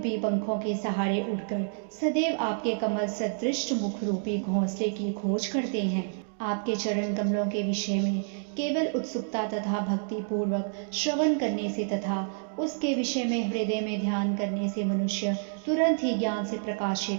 पंखों के सहारे उड़कर सदैव आपके कमल सदृश मुख रूपी घोंसले की खोज करते हैं। आपके चरण कमलों के विषय में केवल उत्सुकता तथा भक्ति पूर्वक श्रवण करने से तथा उसके विषय में हृदय में ध्यान करने से मनुष्य तुरंत ही ज्ञान से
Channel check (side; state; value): left; silent; digital silence